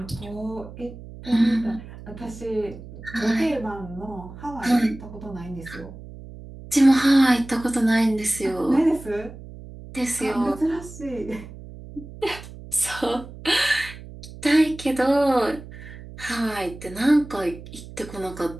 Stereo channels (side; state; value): right; noise; hum, 15 dB below the sound